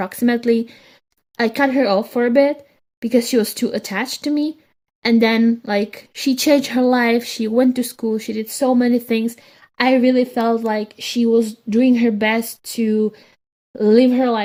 I cut her off for a bit because she was too attached to me. And then, like, she changed her life. She went to school. She did so many things. I really felt like she was doing her best to live her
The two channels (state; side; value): identical; both; correlation 1.00